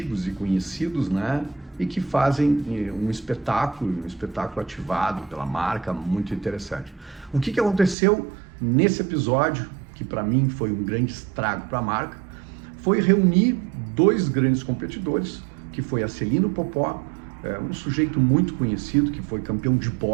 e conhecidos, né? E que fazem um espetáculo ativado pela marca, muito interessante. O que aconteceu nesse episódio, que para mim foi um grande estrago para a marca, foi reunir dois grandes competidores, que foi a Celino Popó, um sujeito muito conhecido, que foi campeão de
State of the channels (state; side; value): drops out; left; at 8.0 s